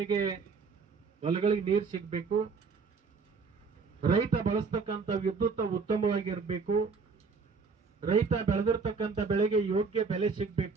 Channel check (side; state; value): left; quieter; 4.9 dB